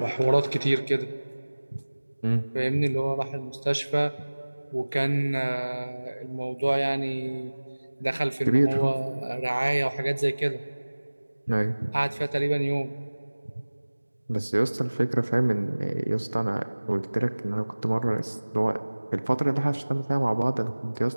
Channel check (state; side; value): inverted; both; correlation -1.00